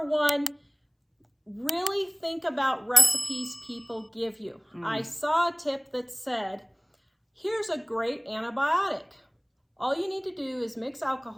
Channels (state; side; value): identical; both; correlation 1.00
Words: one, really think about recipes people give you. I saw a tip that said, here's a great antibiotic. All you need to do is mix